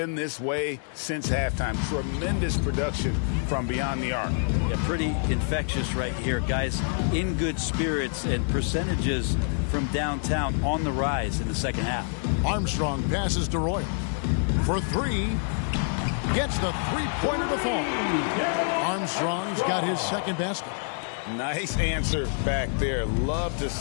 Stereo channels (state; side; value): silent; right; 58 dB below the other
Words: this way since halftime. Tremendous production from beyond the arc. Yeah, pretty infectious right here. Guys in good spirits and percentages from downtown on the rise in the second half. Armstrong passes to Roy. For three. Gets the three-pointer to fall. Armstrong's got his second basket. Nice answer back there. Love to